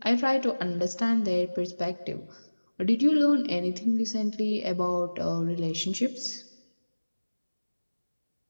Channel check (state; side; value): inverted; both; correlation -1.00